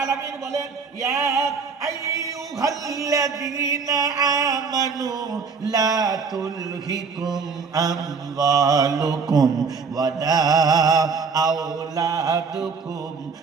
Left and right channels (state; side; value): quieter; left; 5.3 dB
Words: আলামিন বলেন, ইয়া আইয়ুহাল্লাযীনা আমানু লা তুলহিকুম আমওয়ালুকুম ওয়ালা আওলাদুকুম